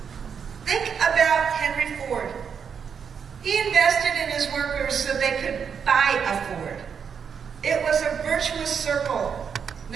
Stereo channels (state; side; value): quieter; left; 6.9 dB